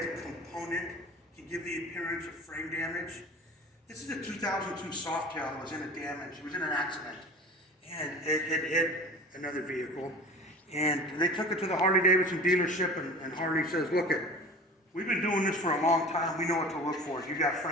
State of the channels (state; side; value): normal; both; correlation 0.38